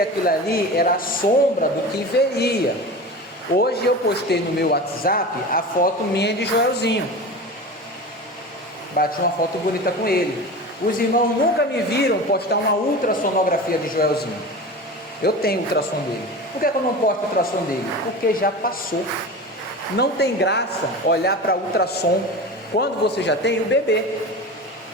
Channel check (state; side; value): normal; both; correlation 0.30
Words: ali era a sombra do que viria. Hoje eu postei no meu WhatsApp a foto minha de Joelzinho, bati uma foto bonita com ele. Os irmãos nunca me viram postar uma ultrassonografia de Joelzinho. Eu tenho ultrassom dele. Por que eu não posto ultrassom dele? Porque já passou. Não tem graça olhar para ultrassom quando você já tem o bebê.